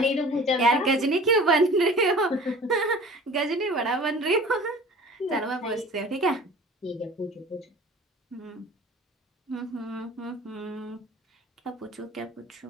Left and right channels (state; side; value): normal; both; correlation 0.43